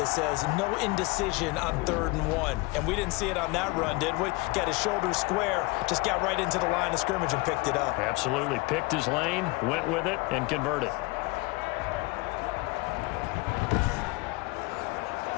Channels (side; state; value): right; quieter; 23.9 dB